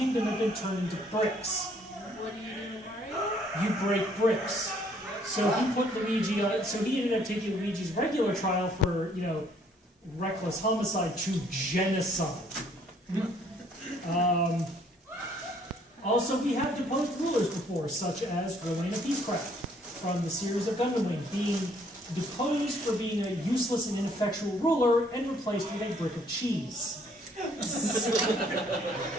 have been turned into bricks. What do you do, Mario? You break bricks. So he put Luigi on, so he ended up taking Luigi's regular trial for, reckless homicide to genocide. Also, we have deposed rulers before, such as Rowena Peacecraft from the series of Gundam Wing, being deposed for being a useless and ineffectual ruler and replaced with a brick of cheese.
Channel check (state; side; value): normal; both; correlation 0.63